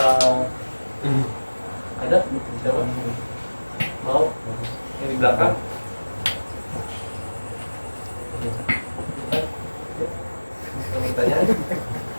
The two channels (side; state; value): both; inverted; correlation -1.00